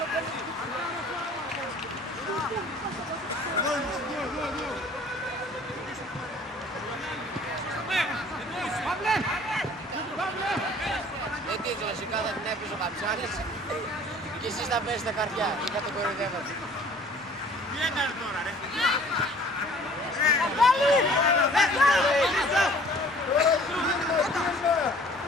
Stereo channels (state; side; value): normal; both; correlation 0.52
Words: Γιατί κλασικά θα την έπαιζε ο Καψάλης και εσείς θα πέσετε καρδιά και θα το κοροϊδεύατε. Τι έκανε τώρα ρε!